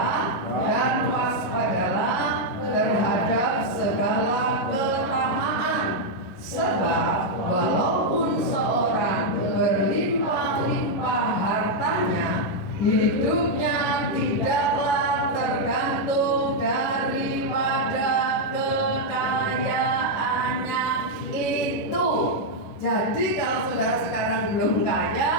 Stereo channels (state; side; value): late; right; 11 ms